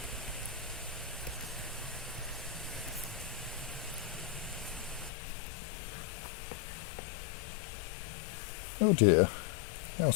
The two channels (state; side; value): drops out; right; at 5.1 s